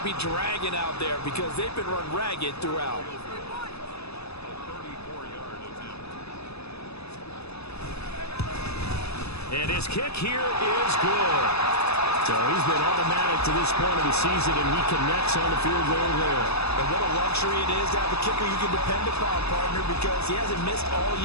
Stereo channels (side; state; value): right; late; 0.79 ms